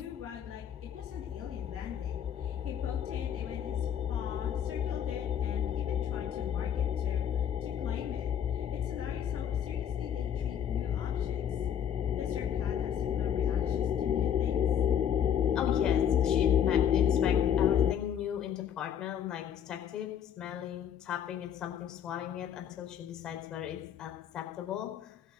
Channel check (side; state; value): right; quieter; 9.1 dB